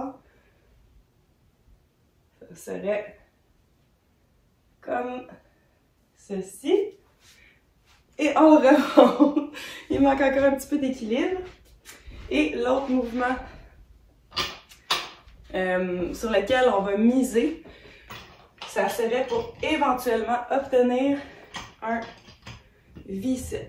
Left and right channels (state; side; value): identical; both; correlation 1.00